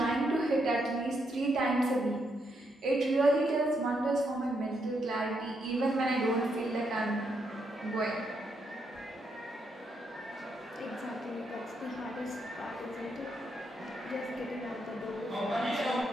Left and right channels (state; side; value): normal; both; correlation 0.78